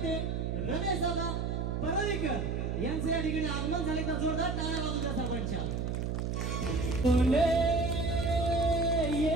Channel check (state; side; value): noise; right; hum, 1 dB below the sound